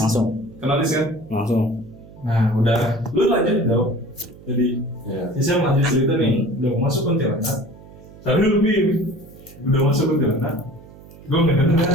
Langsung. kenotis kan. Langsung. Nah udah, lu lanjut dong. Jadi Iya. saya lanjut cerita nih, udah mau masuk kuntilanak. Tapi lu Bim, udah masuk kuntilanak. Gue nggak dengar,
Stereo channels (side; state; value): right; noise; hum, 20 dB below the sound